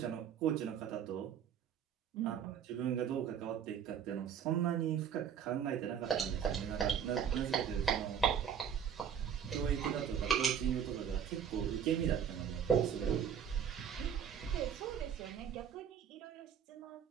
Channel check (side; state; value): left; quieter; 8.2 dB